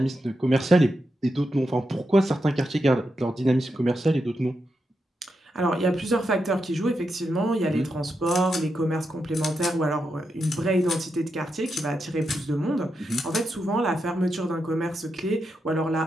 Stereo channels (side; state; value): both; normal; correlation 0.86